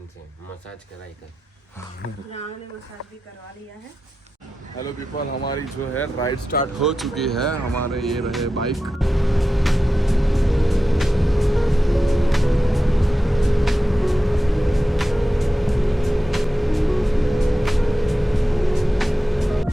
से massage कराई कर ने मसाज भी करवा लिया है। हेलो पीपल, हमारी जो है राइड स्टार्ट हो चुकी है। हमारे ये रहे बाइक।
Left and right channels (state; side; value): normal; both; correlation 0.92